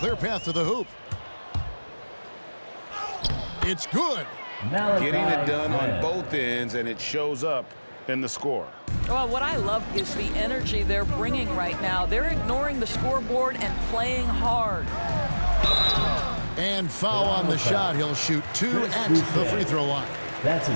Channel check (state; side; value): inverted; both; correlation -1.00